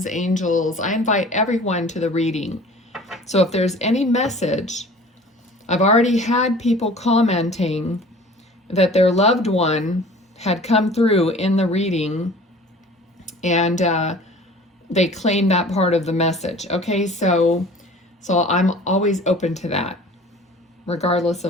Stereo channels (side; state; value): both; normal; correlation 0.46